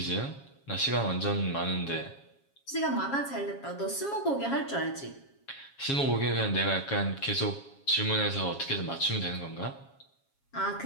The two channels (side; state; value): right; late; 7.3 ms